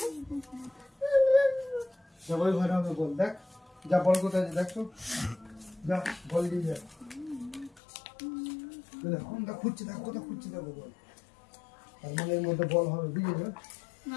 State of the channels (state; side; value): drops out; right; at 7.8 s